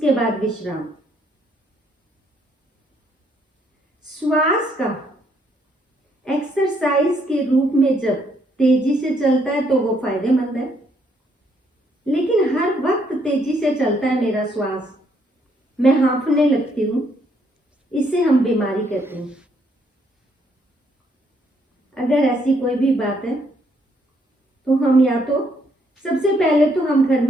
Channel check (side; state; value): both; normal; correlation 0.71